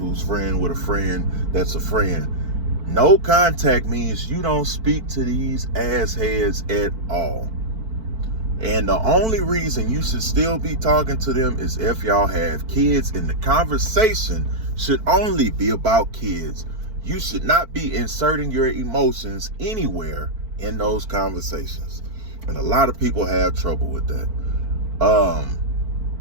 friend with a friend that's a friend. No contact means you don't speak to these assheads at all. And the only reason you should still be talking to them is if y'all have kids, and the conversation should only be about kids. You should not be inserting your emotions anywhere in those conversations. And a lot of people have trouble with that.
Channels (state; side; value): late; left; 4.5 ms